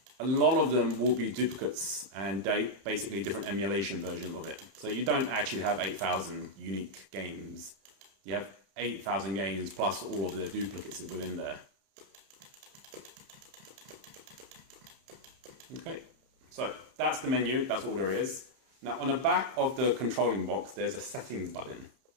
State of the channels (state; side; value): late; left; 31 ms